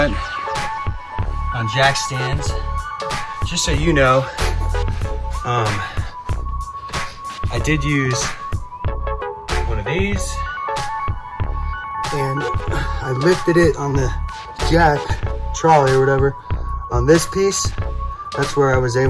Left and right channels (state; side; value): identical; both; correlation 1.00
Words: on jack stands. Just so you know, I did use one of these, and I lifted it on the jack trolley or whatever on this piece. That's where I was